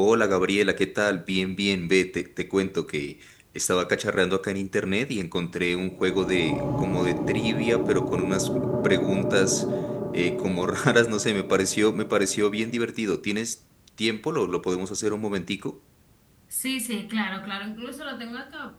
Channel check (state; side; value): identical; both; correlation 1.00